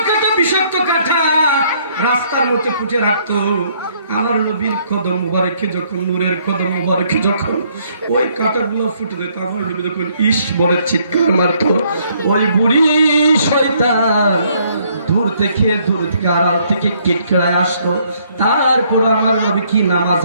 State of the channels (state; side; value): inverted; both; correlation -0.66